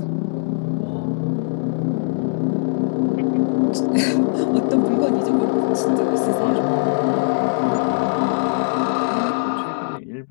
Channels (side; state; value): right; silent; digital silence